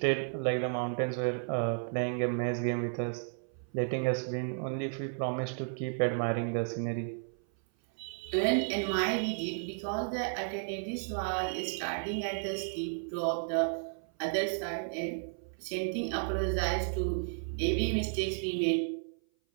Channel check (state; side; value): silent; left; 56 dB below the other